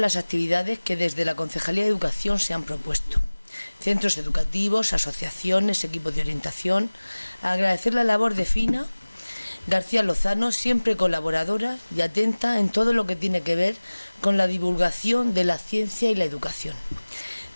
actividades que desde la Concejalía de Educación se han propuesto. Centros educativos, asociaciones, equipos de orientación. Agradecer la labor de Fina García Lozano, siempre colaboradora y atenta en todo lo que tiene que ver con la divulgación de la ciencia y la educación.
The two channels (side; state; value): both; inverted; correlation -1.00